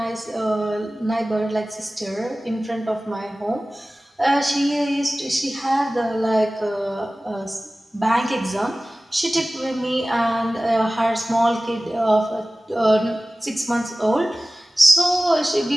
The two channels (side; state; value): both; normal; correlation 0.97